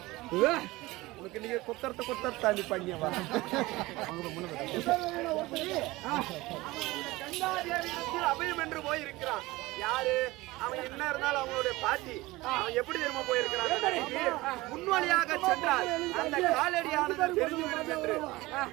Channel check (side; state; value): left; quieter; 20.1 dB